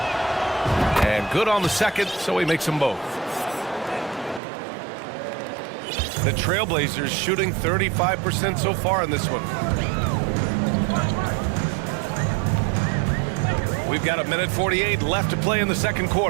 And good on the second, so he makes them both. The Trailblazers shooting 35% so far in this one. We've got 1:48 left to play in the second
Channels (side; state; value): left; drops out; at 4.4 s